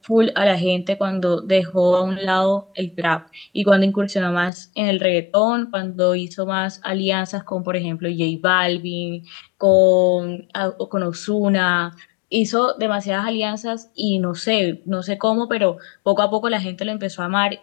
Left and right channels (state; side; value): drops out; right; at 4.5 s